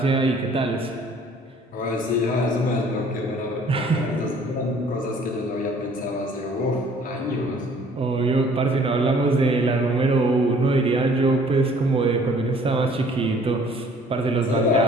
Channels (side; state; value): both; normal; correlation 0.56